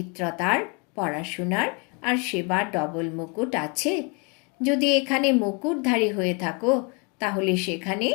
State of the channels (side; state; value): right; quieter; 33.2 dB